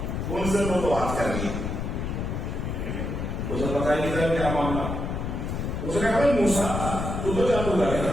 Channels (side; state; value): left; noise; rumble, 3 dB below the sound